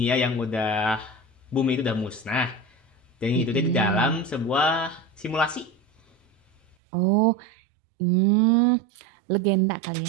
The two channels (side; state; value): left; drops out; at 6.8 s